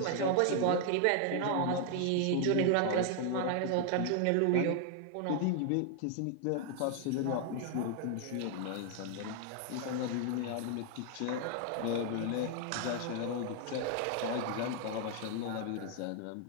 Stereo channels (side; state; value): both; different; correlation 0.00